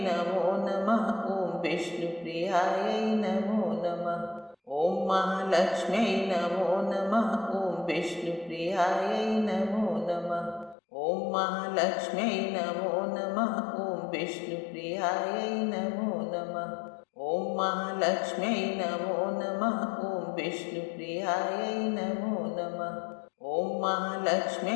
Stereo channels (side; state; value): right; drops out; at 10.8 s